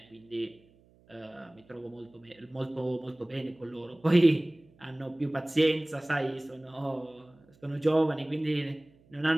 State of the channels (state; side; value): noise; right; hum, 30 dB below the sound